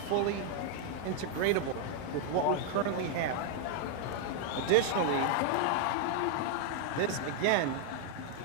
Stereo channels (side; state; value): both; different; correlation 0.00